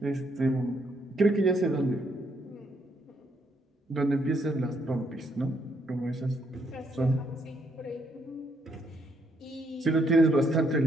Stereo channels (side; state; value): both; normal; correlation 0.73